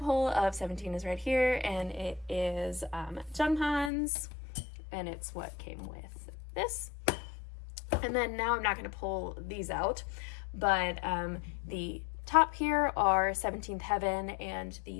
of 17 is right here, and it is Junghan's, and it's what came with this. And then now I'm not going to pull these out, but the top here are 17th Heaven, and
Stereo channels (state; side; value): drops out; right; at 3.9 s